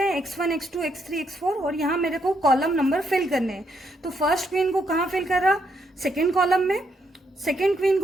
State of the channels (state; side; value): normal; both; correlation 0.76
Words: x1 x2 x3 x4, और यहाँ मेरे को कॉलम नंबर फिल करने हैं। तो फर्स्ट क्वीन को कहाँ फिल कर रहा, सेकेंड कॉलम में, सेकेंड क्वीन